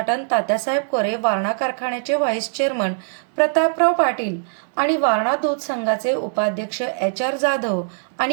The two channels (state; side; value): silent; left; 62 dB below the other